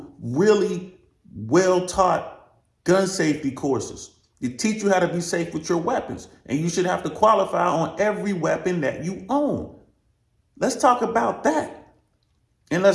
really well-taught gun safety courses. They teach you how to be safe with your weapons, and you should have to qualify on every weapon that you own. Let's talk about that. And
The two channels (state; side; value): identical; both; correlation 1.00